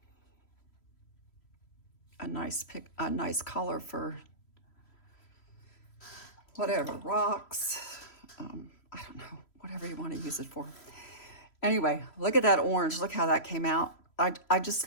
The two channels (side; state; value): right; late; 3.0 ms